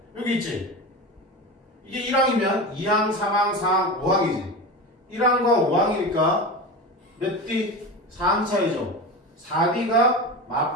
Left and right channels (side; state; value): both; normal; correlation 0.26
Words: 여기 있지. 이게 1항이면 2항, 3항, 4항, 5항이지. 1항과 5항이니까 몇 D? 4항 차이죠. 4D가